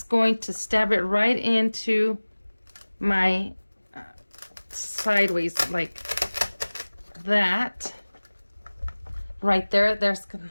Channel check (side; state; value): both; inverted; correlation -1.00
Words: going to stab it right into my sideways like that. Right there, there's